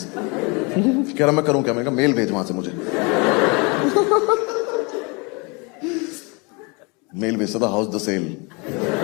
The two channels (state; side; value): quieter; right; 30.2 dB